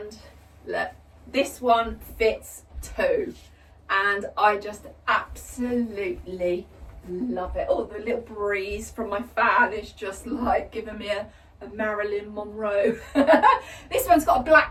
look, this one fits too, and I just absolutely love it. Oh, the little breeze from my fan is just like giving me a Marilyn Monroe. This one's got a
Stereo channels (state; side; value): identical; both; correlation 1.00